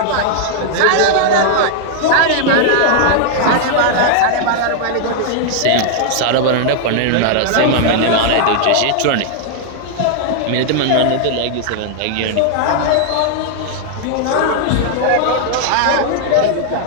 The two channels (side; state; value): both; different; correlation 0.00